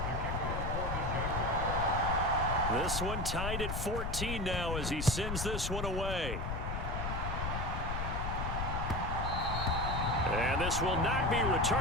This one tied at 14 now as he sends this one away. And this will not be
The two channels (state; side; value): noise; left; rumble, 2 dB below the sound